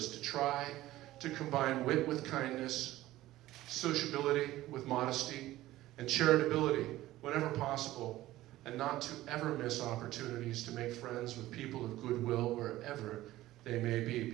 to try to combine wit with kindness, sociability with modesty, and charitability whenever possible, and not to ever miss opportunities to make friends with people of goodwill wherever they may be,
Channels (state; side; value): quieter; left; 15.9 dB